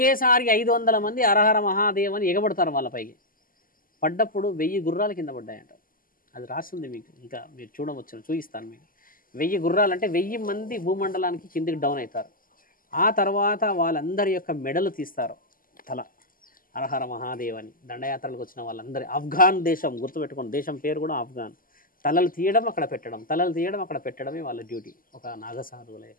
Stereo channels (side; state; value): right; late; 0.41 ms